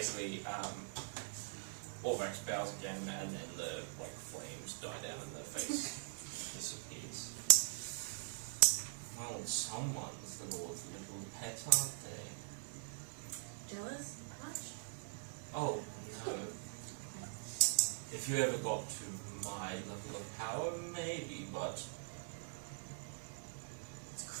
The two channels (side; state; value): left; silent; digital silence